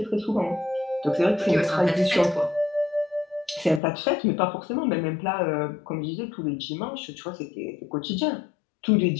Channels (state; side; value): drops out; right; at 3.8 s